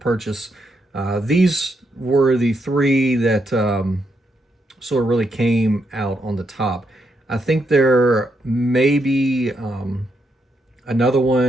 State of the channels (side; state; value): both; normal; correlation 0.80